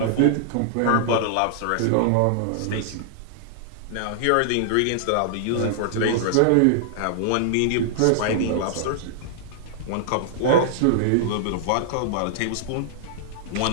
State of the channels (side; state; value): both; different; correlation -0.01